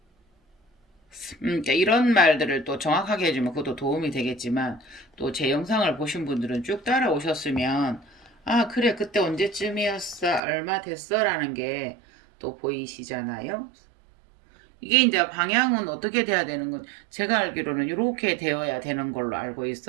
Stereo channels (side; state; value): left; drops out; at 10.4 s